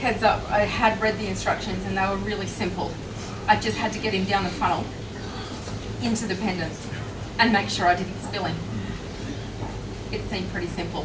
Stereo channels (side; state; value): both; identical; correlation 1.00